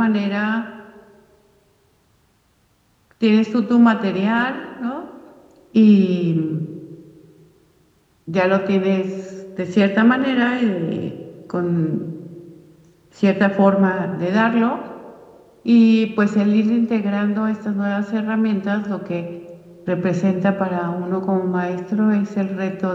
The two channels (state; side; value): identical; both; correlation 1.00